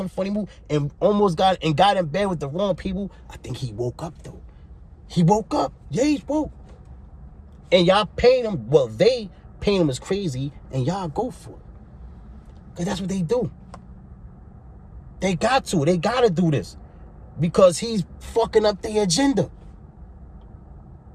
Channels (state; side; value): identical; both; correlation 1.00